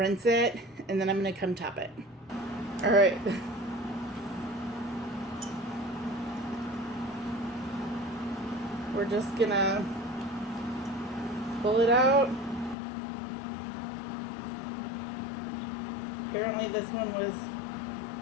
it and then I'm gonna come top it. All right. We're just gonna pull it out. Apparently this one was,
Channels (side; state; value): right; drops out; at 12.8 s